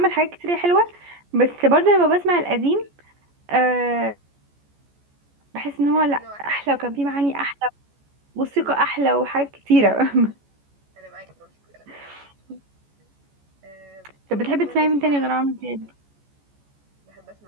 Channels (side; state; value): left; late; 14 ms